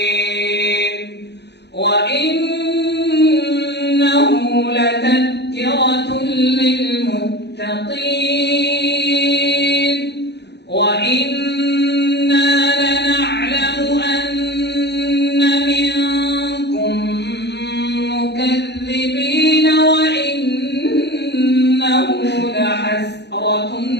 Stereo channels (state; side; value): late; right; 0.49 ms